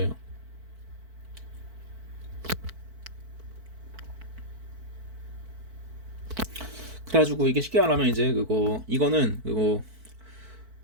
그래가지고 이게 쉽게 말하면 이제 이거는 그거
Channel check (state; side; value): late; left; 4.5 ms